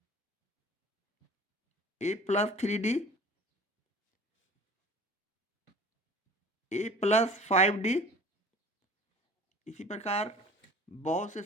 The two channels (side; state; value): both; normal; correlation 0.45